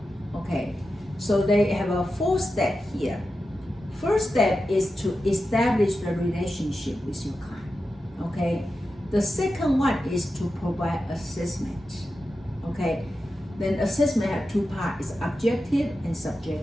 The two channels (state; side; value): normal; both; correlation 0.91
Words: Okay. So they have a 4 step here. First step is to establish the relationship with your client. Okay. The second one is to provide assessment. Okay. Then assessment have 2 parts: is objective and